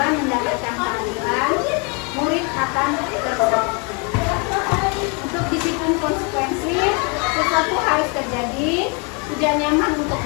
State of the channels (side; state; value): right; quieter; 34.0 dB